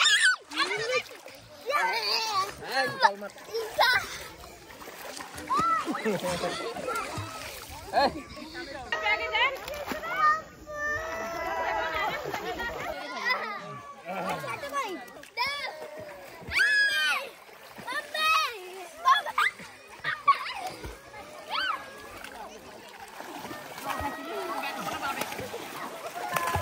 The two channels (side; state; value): both; identical; correlation 1.00